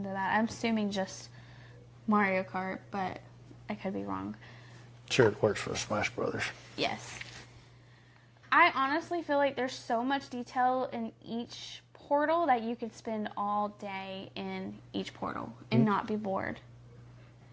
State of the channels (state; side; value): identical; both; correlation 1.00